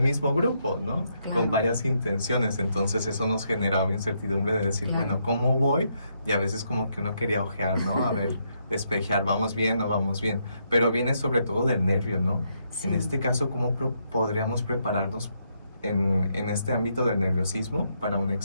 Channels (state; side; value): inverted; both; correlation -0.76